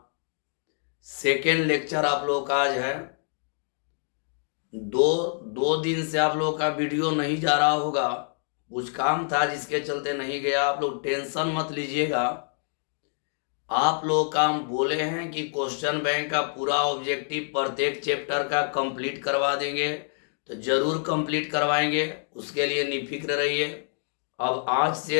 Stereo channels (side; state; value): right; silent; 60 dB below the other